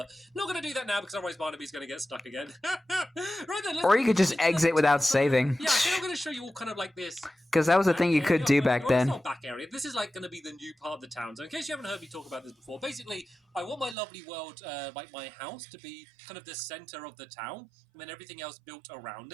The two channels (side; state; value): left; drops out; at 14.0 s